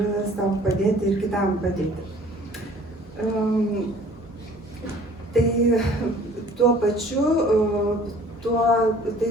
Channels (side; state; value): both; normal; correlation 0.52